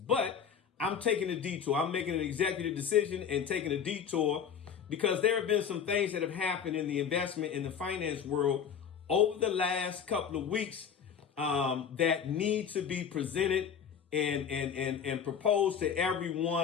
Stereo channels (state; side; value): quieter; right; 7.5 dB